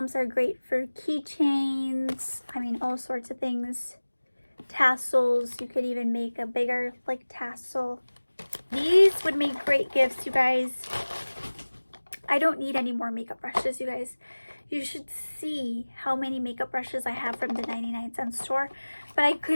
are great for keychains. I mean, all sorts of things. Tassels. You could even make a bigger, like, tassel. These would make great gifts, you guys. I don't need any more makeup brushes, you guys. You should see how many makeup brushes I have from the 99-cent store. But I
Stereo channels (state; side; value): inverted; both; correlation -1.00